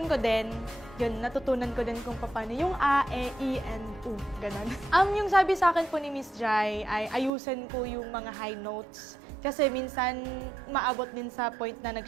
ko din. Yun, natutunan ko din kung paano yung A, E, I, and U, ganun. Yung sabi sa akin po ni Miss Jai ay ayusin ko yung mga high notes. Kasi minsan maabot din sa point na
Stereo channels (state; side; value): drops out; left; at 7.3 s